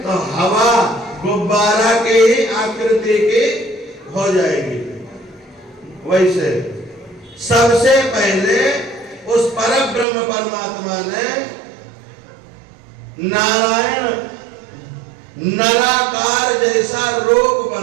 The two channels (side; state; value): left; drops out; at 10.1 s